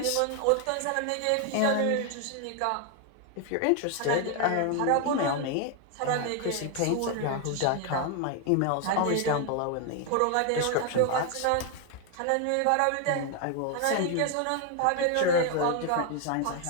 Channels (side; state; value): both; different; correlation 0.01